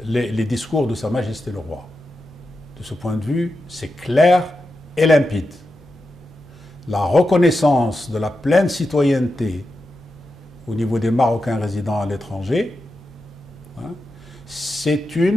les discours de Sa Majesté le Roi. De ce point de vue, c'est clair et limpide. La reconnaissance de la pleine citoyenneté au niveau des Marocains résidant à l'étranger, hein, c'est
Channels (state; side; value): normal; both; correlation 0.89